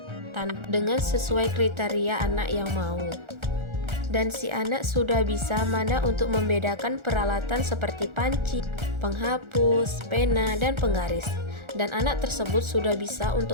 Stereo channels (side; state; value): left; late; 1.4 ms